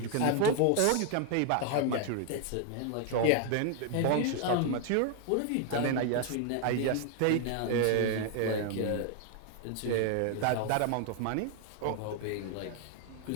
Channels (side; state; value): both; different; correlation 0.00